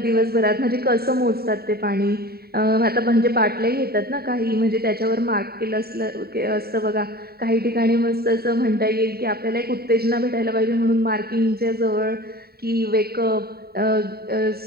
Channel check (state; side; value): late; left; 0.45 ms